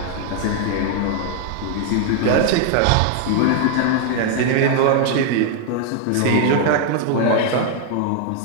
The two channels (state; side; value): different; both; correlation 0.00